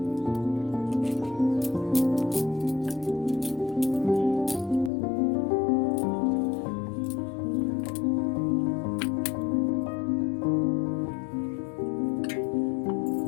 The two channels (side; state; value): right; drops out; at 4.9 s